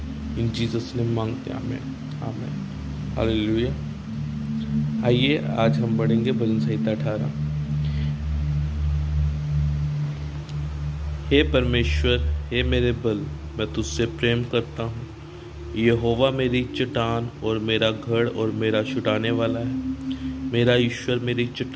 इन जीसस ने मांगते हैं, आमीन आमीन हालेलुया। आइए आज हम पढ़ेंगे भजन संहिता 18। हे परमेश्वर, हे मेरे बल, मैं तुझसे प्रेम करता हूँ। यहोवा मेरी चट्टान और मेरा गढ़ और मेरा छुड़ाने वाला है। मेरा ईश्वर मेरी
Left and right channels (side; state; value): both; identical; correlation 1.00